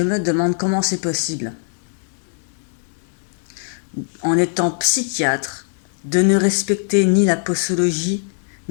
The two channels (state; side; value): silent; right; 56 dB below the other